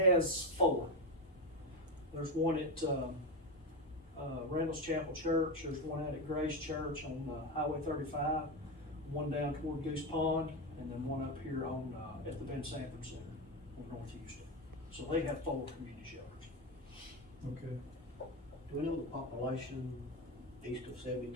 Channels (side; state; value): both; normal; correlation 0.14